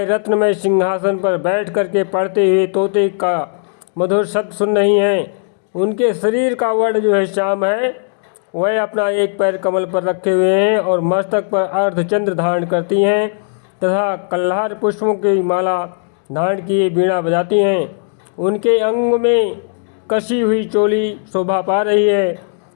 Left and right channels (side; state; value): right; silent; digital silence